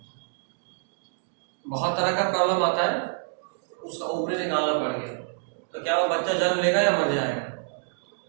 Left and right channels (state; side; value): silent; left; digital silence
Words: बहुत तरह का प्रॉब्लम आता है, उसका ओवरी निकालना पड़ गया, तो क्या वो बच्चा जन्म लेगा या मर जाएगा?